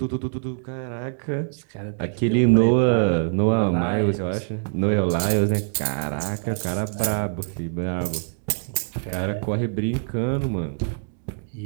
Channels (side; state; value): left; silent; digital silence